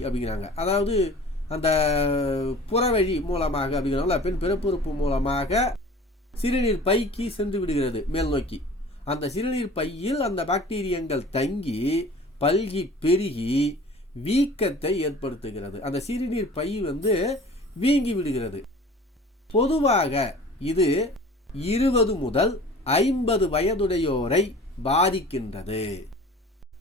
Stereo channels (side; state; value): both; normal; correlation 0.44